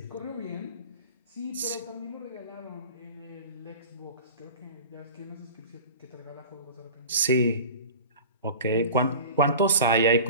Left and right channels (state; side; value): inverted; both; correlation -0.37